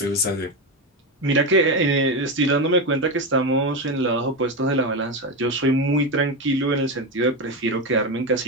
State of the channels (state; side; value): normal; both; correlation 0.14